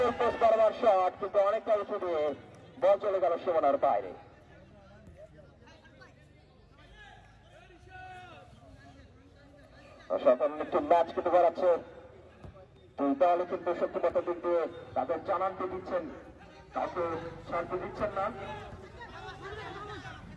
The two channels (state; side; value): identical; both; correlation 1.00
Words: পোস্ট বরাবর শট, কিন্তু অনেকটা উঁচু দিয়ে বল চলে গেল সীমানার বাইরে। অসাধারণ একটু ম্যাচ কিন্তু করাচ্ছে, তাহলে কিন্তু সত্যি দিক দিয়ে তাদের জানানতে দিচ্ছেন, কাউকে ছাড়তে দিচ্ছেন না।